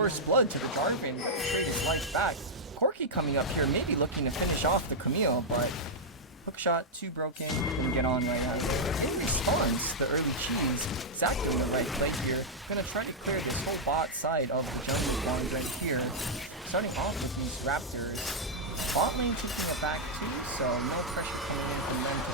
blood to the Jarvan. Gonna trade his life back. Corki coming up here, maybe looking to finish off the Camille, but hook shot, too broken, and get on right now. In response, the early cheese, Zac doing the right play here. Gonna try to clear this whole bot side of the jungle one right here. Starting off with these Raptors. Bot lane taking it back too, so no pressure coming in from them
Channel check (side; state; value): both; normal; correlation -0.05